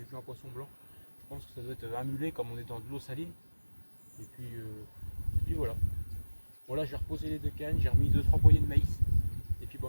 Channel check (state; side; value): inverted; both; correlation -1.00